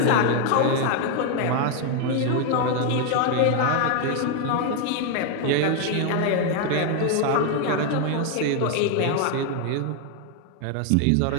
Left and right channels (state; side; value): different; both; correlation 0.01